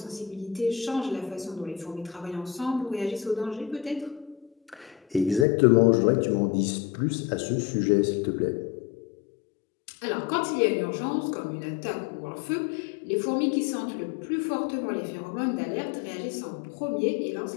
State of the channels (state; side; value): drops out; right; at 5.5 s